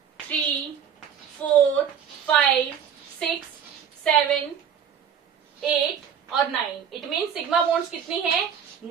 3 4 5 6 7 8 और 9। इट मीन सिग्मा बॉन्ड्स कितनी है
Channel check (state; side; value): quieter; left; 8.0 dB